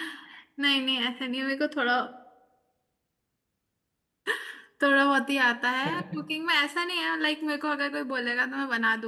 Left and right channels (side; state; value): both; identical; correlation 1.00